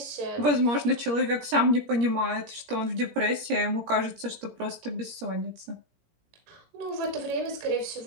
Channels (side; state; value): left; late; 17 ms